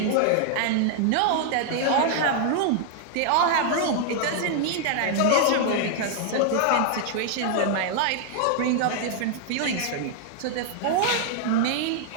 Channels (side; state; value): both; different; correlation 0.00